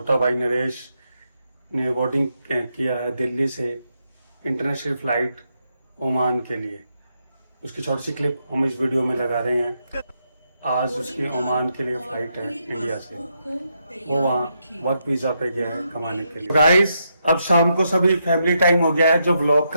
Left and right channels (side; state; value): both; inverted; correlation -0.81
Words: भाई नरेश ने बोर्डिंग किया है दिल्ली से इंटरनेशनल फ्लाइट ओमान के लिए। उसकी छोटी सी क्लिप हम इस वीडियो में लगा रहे हैं। आज उसकी ओमान के लिए फ्लाइट है इंडिया से, वो वहाँ वर्क वीजा पे गया है कमाने के लिए। गाइस, अब शाम को सभी फैमिली टाइम हो गया है, जो ब्लॉग